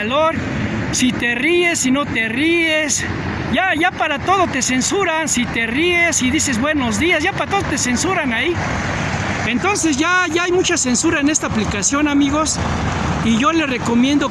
si te ríes, si no te ríes. Ya para todo te censuran, si te ríes y dices buenos días, ya para todo te censuran ahí. Entonces ya hay mucha censura en esta aplicación, amigos. y yo les recomiendo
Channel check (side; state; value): both; identical; correlation 1.00